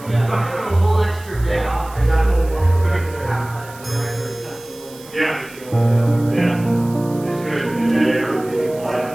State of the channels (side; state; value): right; noise; hiss, 21 dB below the sound